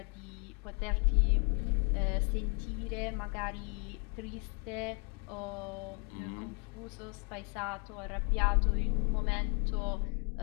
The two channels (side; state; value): right; quieter; 36.0 dB